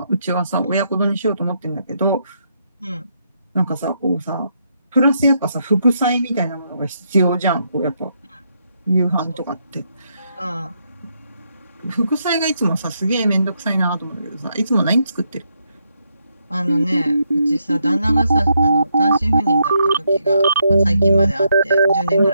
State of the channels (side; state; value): both; inverted; correlation -0.78